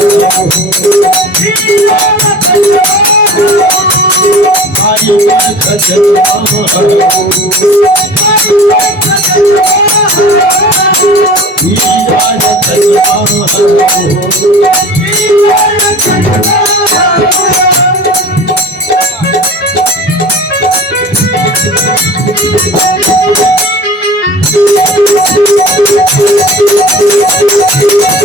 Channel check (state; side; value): normal; both; correlation 0.39